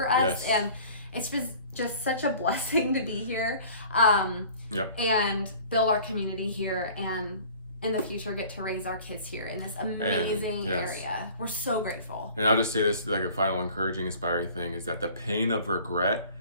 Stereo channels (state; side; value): inverted; both; correlation -0.48